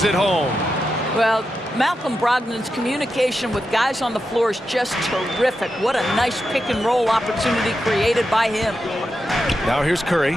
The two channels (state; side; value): normal; both; correlation 0.88